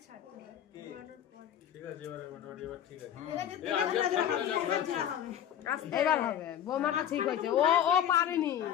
ছাড়তে হবে, ঘোরানোর পরে। ঠিক আছে, এবারে মোটামুটি এবার ঠিক আছে। এবার হবে। বৌমাটা ঠিক হয়েছে, ও পারেনি।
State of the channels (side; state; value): right; quieter; 10.2 dB